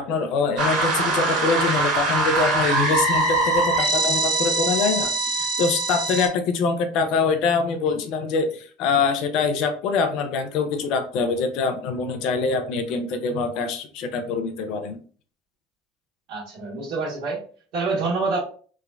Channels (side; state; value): both; normal; correlation 0.32